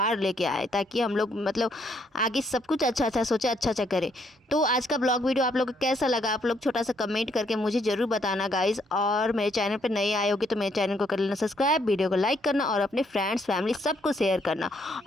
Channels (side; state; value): both; normal; correlation 0.71